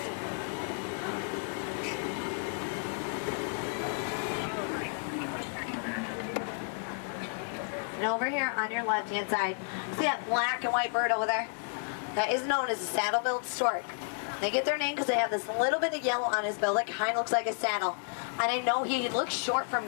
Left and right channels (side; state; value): right; silent; 57 dB below the other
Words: And over here on your left-hand side, see that black and white bird over there? That is known as a saddle-billed stork. They get their name because they have this little bit of yellow on his bill that kind of looks like a saddle. And I know he looks short from